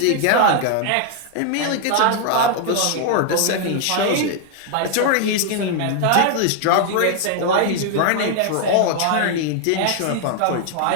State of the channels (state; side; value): different; both; correlation 0.00